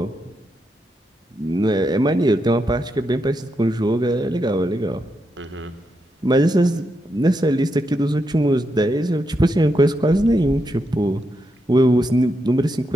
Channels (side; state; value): both; normal; correlation 0.83